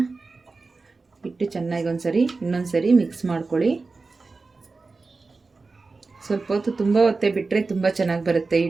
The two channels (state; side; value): quieter; left; 3.9 dB